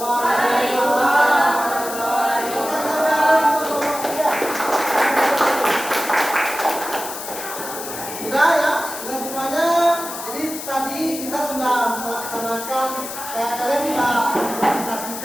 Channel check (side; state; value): left; noise; hiss, 9 dB below the sound